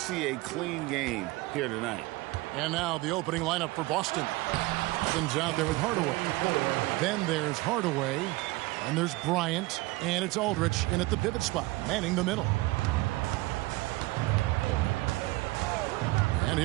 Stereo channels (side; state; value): left; quieter; 21.0 dB